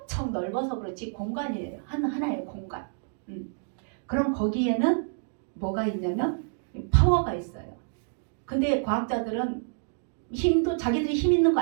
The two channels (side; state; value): left; silent; digital silence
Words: 넓어서 그렇지 공간이에요. 하나의 공간. 그럼 거기에는 뭐가 있냐면 파워가 있어요. 근데 과학자들은 힘도 자기들이 힘 있는 거